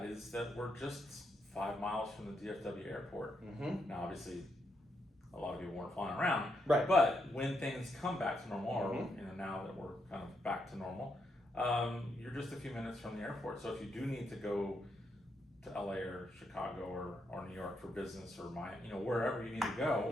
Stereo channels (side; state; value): both; normal; correlation 0.80